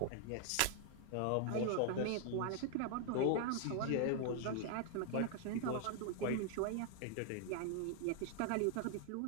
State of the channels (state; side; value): different; both; correlation 0.00